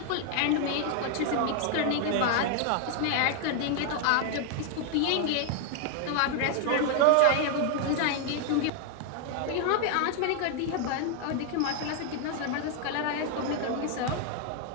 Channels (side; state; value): both; different; correlation 0.00